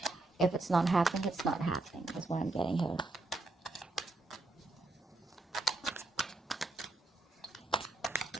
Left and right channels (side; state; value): left; quieter; 3.1 dB